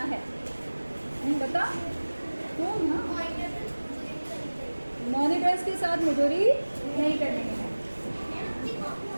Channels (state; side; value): inverted; both; correlation -1.00